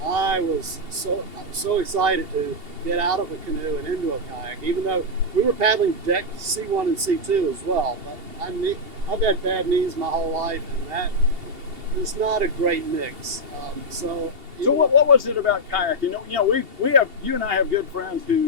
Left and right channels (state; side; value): late; left; 2.8 ms